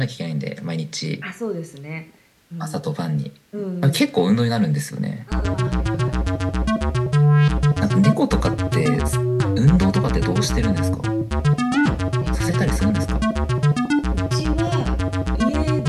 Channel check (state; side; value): identical; both; correlation 1.00